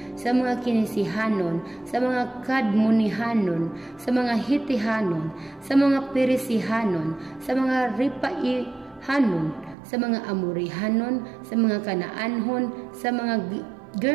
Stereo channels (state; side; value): drops out; left; at 9.8 s